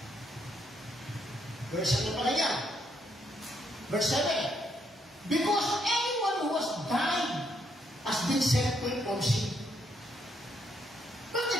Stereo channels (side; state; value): both; normal; correlation 0.74